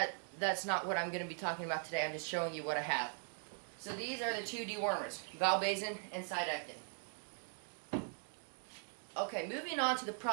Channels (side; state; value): left; silent; 51 dB below the other